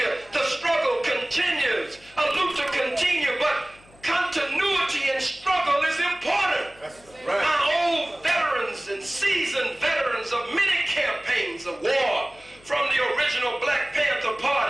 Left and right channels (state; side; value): noise; left; hum, 27 dB below the sound